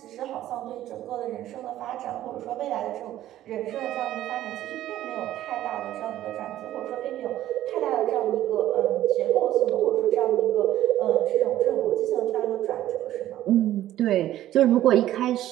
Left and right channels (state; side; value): quieter; left; 13.4 dB